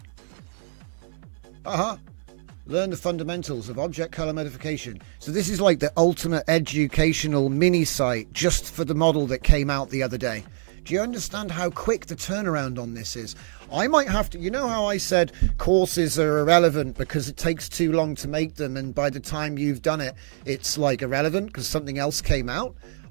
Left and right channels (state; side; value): silent; left; 59 dB below the other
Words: Learn the fundamentals of object color modification. So this is like the ultimate educational mini site just for the model that came out the other day. Do you understand how quick the turnaround on this is? I might have to, you know how I said courses are irrelevant because it takes too long to make them, and by the time you've done it, it's like irrelevant because something else came out?